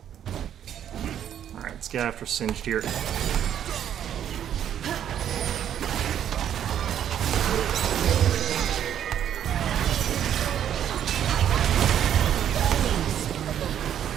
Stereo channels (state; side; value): quieter; left; 9.9 dB